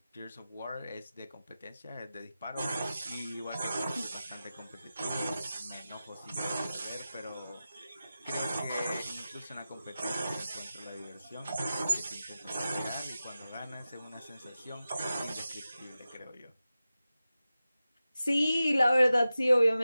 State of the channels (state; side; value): inverted; both; correlation -0.94